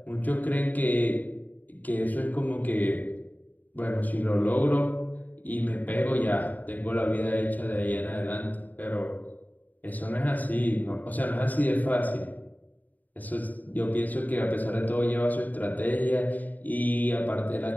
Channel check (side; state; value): right; late; 0.082 ms